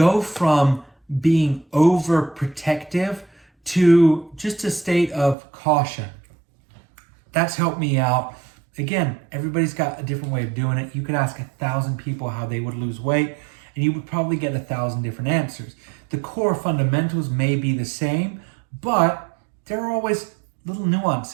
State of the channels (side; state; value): left; drops out; at 5.4 s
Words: from being overprotective to just a state of caution. That's helped me out. Again, everybody's got a different way of doing it. You could ask 1,000 people how they would lose weight, and you would probably get 1,000 different answers. The core fundamentals may be the same, but there are always little